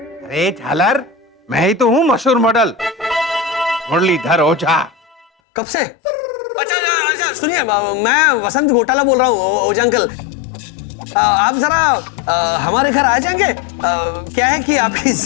झालर, मैं ही तो हूँ मशहूर मॉडल मुरलीधर ओझा। कब से? अच्छा अच्छा, सुनिए, मैं वसंत घोटाला बोल रहा हूँ ओझा अंकल। आप जरा हमारे घर आ जाएंगे? क्या है कि आपकी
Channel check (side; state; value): right; drops out; at 5.2 s